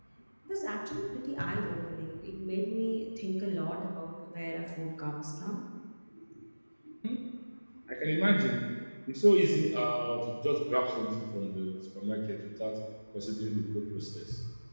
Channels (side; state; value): both; inverted; correlation -1.00